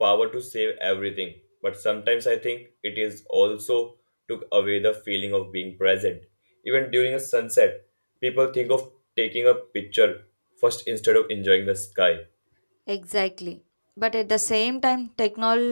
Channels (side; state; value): both; inverted; correlation -1.00